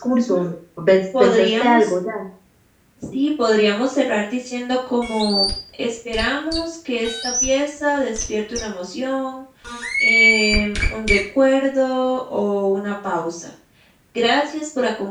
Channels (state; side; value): identical; both; correlation 1.00